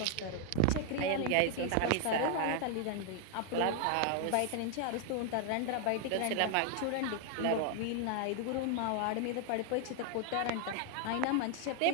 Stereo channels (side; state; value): both; different; correlation 0.00